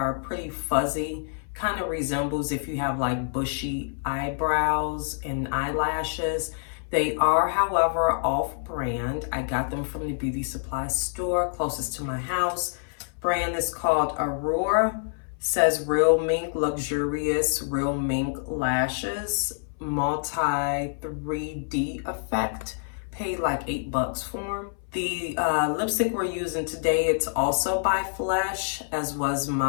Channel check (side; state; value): right; silent; 60 dB below the other